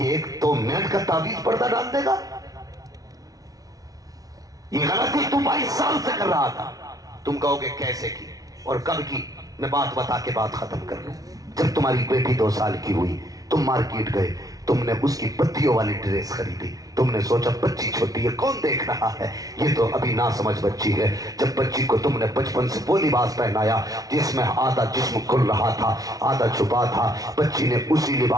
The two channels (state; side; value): late; left; 0.18 ms